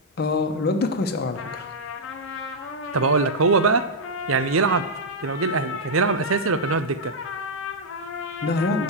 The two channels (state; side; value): normal; both; correlation -0.04